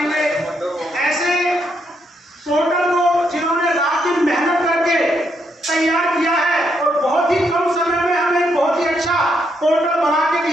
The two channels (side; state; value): both; normal; correlation 0.77